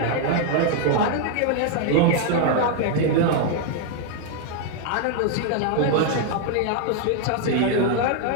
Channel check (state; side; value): different; both; correlation 0.00